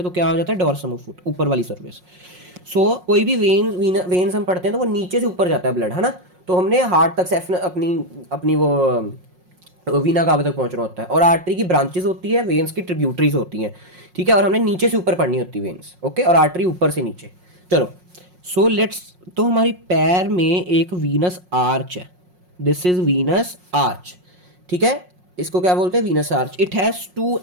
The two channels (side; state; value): left; late; 5.5 ms